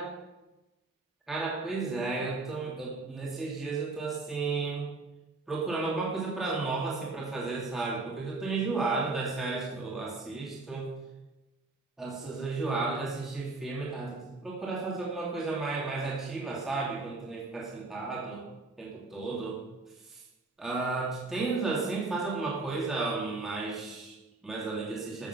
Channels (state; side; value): quieter; left; 3.4 dB